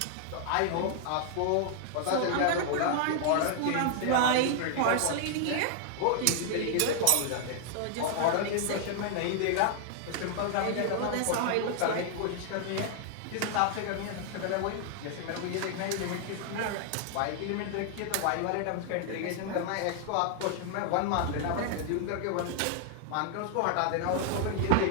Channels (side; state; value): both; different; correlation 0.00